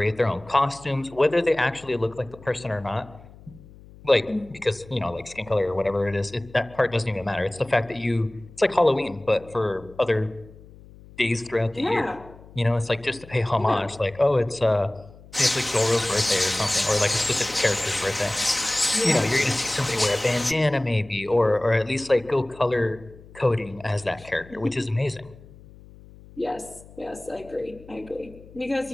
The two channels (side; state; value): left; noise; hum, 21 dB below the sound